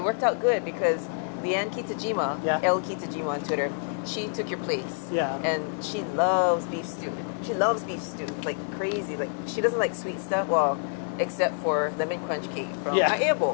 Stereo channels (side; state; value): right; silent; 60 dB below the other